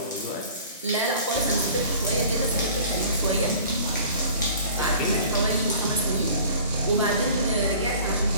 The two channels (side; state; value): both; inverted; correlation -0.47